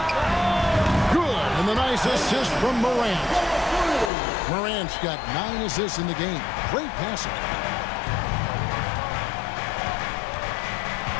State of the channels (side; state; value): right; drops out; at 4.1 s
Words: Good, and the nice assist from Morant. Morant's got 9 assists in the game. Great passing.